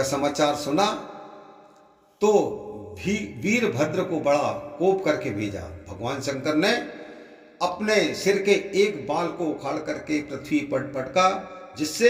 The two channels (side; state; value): both; identical; correlation 1.00